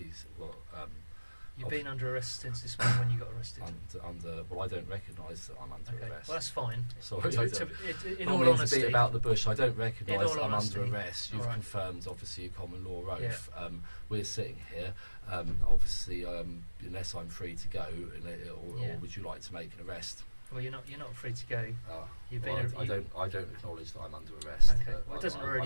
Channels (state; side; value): inverted; both; correlation -1.00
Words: Well, You've been under arrest since this morning when you got arrested. well, I don't recognise that I'm under Okay, arrest. well that's fine. Sorry, In I all don't mean to honesty, beat about the bush. I don't recognise all that I'm honesty, under arrest. You've all right. confirmed, obviously, a common law oath. Yeah. We're sitting here. Obviously, unless I'm free to go, or would you like to make an arrest? well, you're not free to go. You've Well, been. I don't acknowledge that I'm under arrest. Okay, well, it doesn't